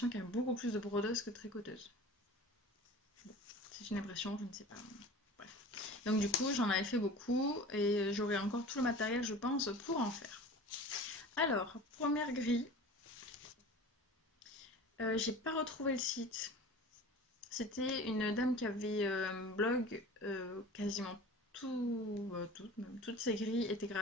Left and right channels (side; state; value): both; normal; correlation 0.39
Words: qu'il y a beaucoup plus de brodeuses que de tricoteuses. C'est une impression, je ne sais pas. Bref. Donc du coup j'en avais fait beaucoup et j'aurai encore tout le matériel je pense pour en faire. Alors, première grille, j'ai pas retrouvé le site. C'était une dame qui avait un blog, quasiment toutes ses grilles étaient